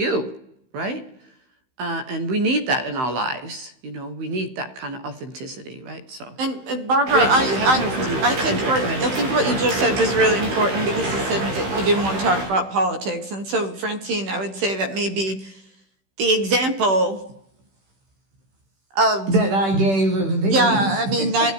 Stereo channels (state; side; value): late; left; 15 ms